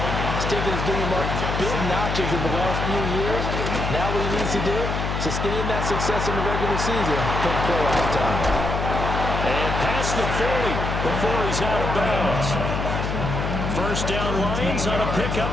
He's taken his game up big notches in the last few years. Now what he needs to do, sustain that success in the regular season come playoff time. And past the 40 before he's out of bounds. First down Lions on a pickup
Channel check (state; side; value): noise; left; hum, 2 dB below the sound